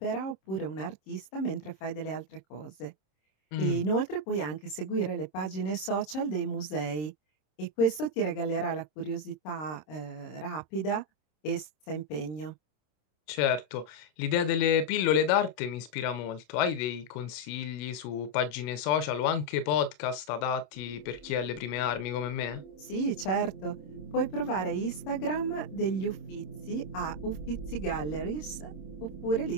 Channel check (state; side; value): late; right; 26 ms